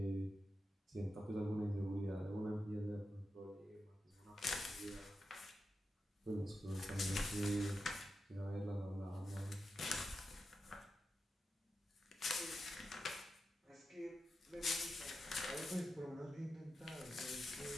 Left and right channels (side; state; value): both; normal; correlation 0.89